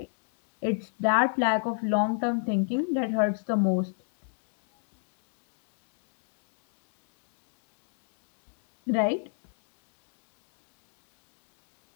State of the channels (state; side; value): silent; right; 61 dB below the other